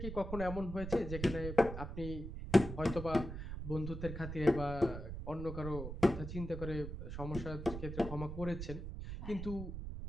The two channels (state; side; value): noise; right; rumble, 7 dB below the sound